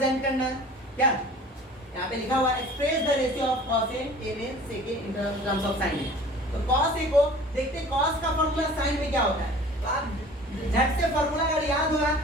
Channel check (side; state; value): both; normal; correlation 0.45